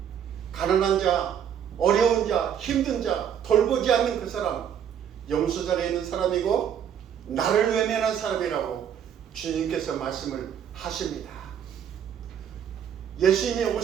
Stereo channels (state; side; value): quieter; left; 8.8 dB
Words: 가난한 자, 어려운 자, 힘든 자, 돌보지 않는 그 사람, 염소자리에 있는 사람이고 나를 외면한 사람이라고 주님께서 말씀을 하십니다. 예수님이